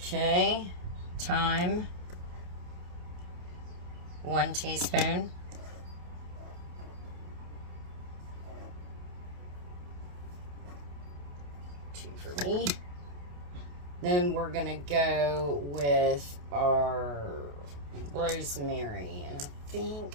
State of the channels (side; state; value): left; late; 28 ms